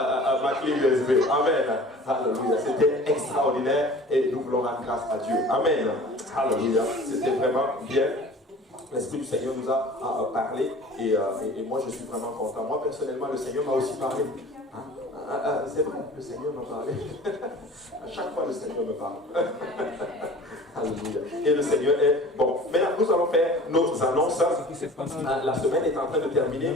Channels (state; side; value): normal; both; correlation 0.43